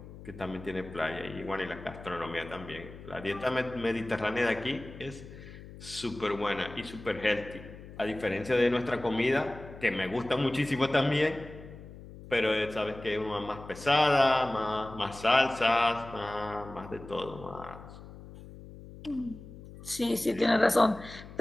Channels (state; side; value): noise; left; hum, 16 dB below the sound